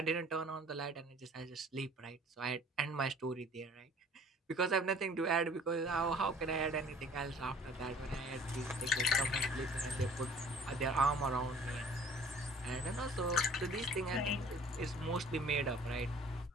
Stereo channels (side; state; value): both; normal; correlation 0.51